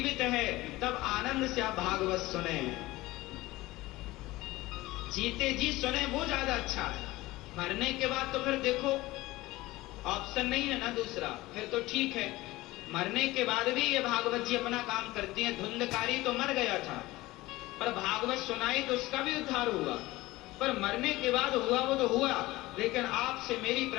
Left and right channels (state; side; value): quieter; right; 19.0 dB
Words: है तब आनंद से आप भागवत सुने, जीते जी सुने, वो ज्यादा अच्छा है। मरने के बाद तो फिर देखो ऑप्शन नहीं है ना दूसरा, फिर तो ठीक है। मरने के बाद भी ये भागवत जी अपना काम करती हैं। धुंधकारी तो मर गया था पर भागवत सुनाई तो उसका भी उद्धार हुआ, पर मरने के बाद हुआ वो तो हुआ। लेकिन आपसे मेरी